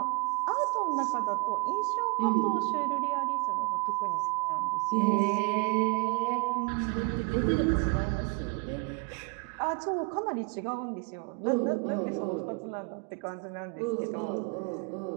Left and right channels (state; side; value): quieter; left; 29.8 dB